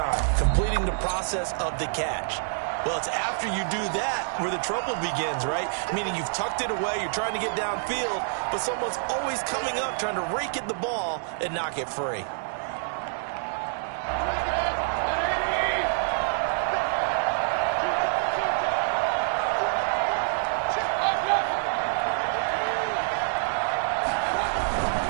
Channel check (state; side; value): silent; left; digital silence